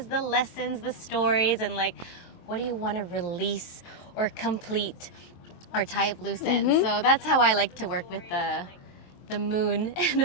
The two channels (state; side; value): late; right; 23 ms